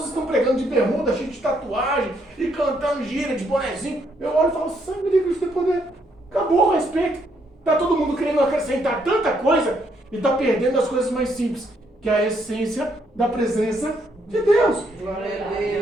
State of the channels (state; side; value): normal; both; correlation 0.73